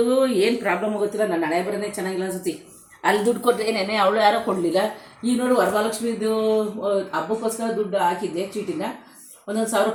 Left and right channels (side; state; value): both; identical; correlation 1.00